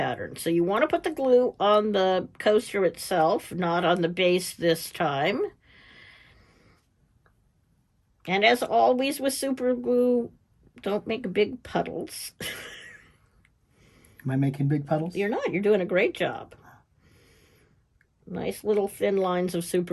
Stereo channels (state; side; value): identical; both; correlation 1.00